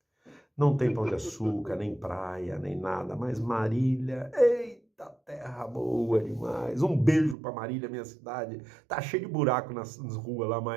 não tem pão de açúcar, nem praia, nem nada, mas Marília, eita, terra boa demais. Um beijo para Marília, minha cidade. Tá cheio de buraco nas ruas lá,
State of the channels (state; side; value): drops out; left; at 7.4 s